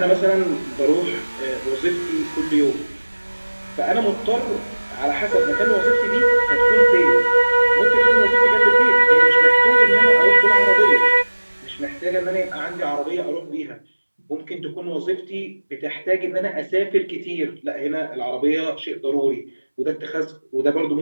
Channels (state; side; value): inverted; both; correlation -1.00